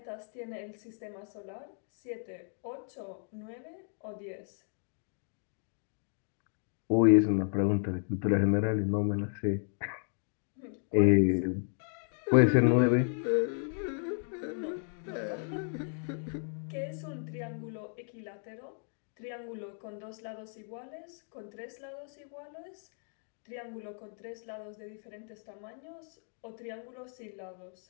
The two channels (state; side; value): silent; right; 55 dB below the other